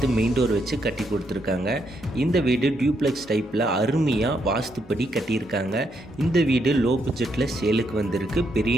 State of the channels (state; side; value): normal; both; correlation 0.77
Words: மெயின் டோர் வச்சு கட்டி கொடுத்துருக்காங்க. இந்த வீடு டியூப்ளெக்ஸ் டைப்பில் அருமையாக வாஸ்துப்படி கட்டியிருக்காங்க. இந்த வீடு லோ பட்ஜெட்டில் சேலுக்கு வந்திருக்கு.